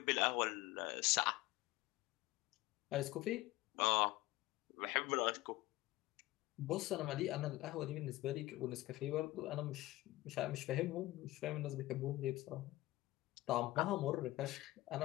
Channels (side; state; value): right; quieter; 18.2 dB